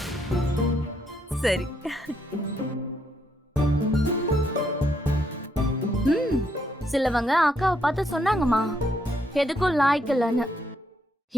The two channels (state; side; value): normal; both; correlation 0.75